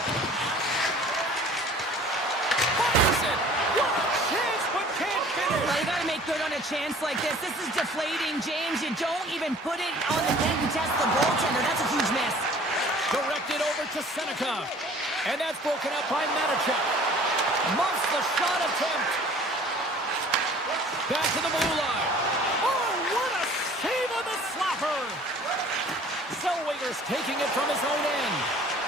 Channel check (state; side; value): normal; both; correlation 0.50